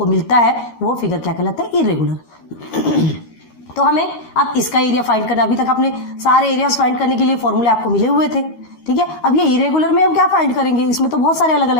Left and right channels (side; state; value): right; late; 13 ms